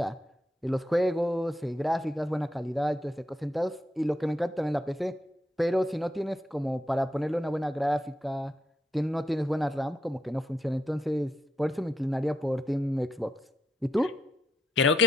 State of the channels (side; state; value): both; normal; correlation 0.81